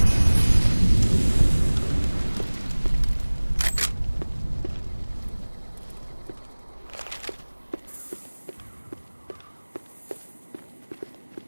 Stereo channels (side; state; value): both; inverted; correlation -1.00